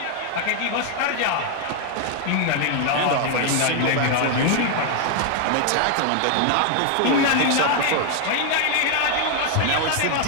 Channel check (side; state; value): both; different; correlation 0.00